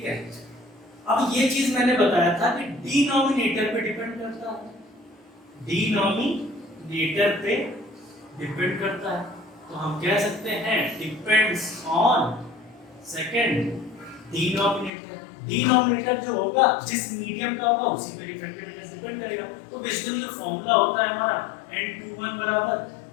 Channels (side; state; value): right; drops out; at 14.9 s